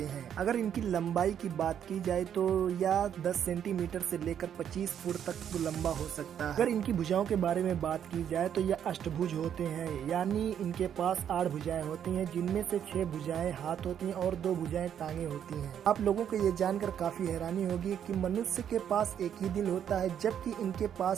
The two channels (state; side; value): quieter; left; 9.1 dB